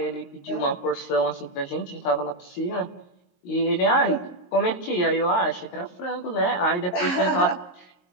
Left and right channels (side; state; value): right; late; 22 ms